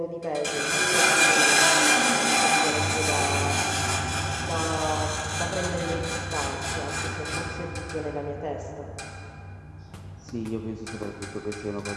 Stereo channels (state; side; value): identical; both; correlation 1.00